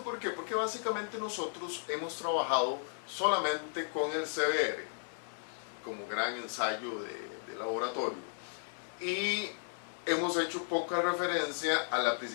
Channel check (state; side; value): silent; right; digital silence